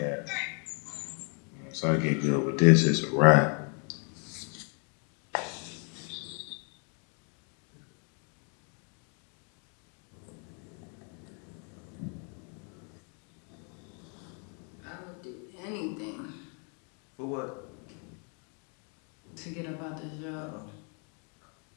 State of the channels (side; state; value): right; quieter; 39.5 dB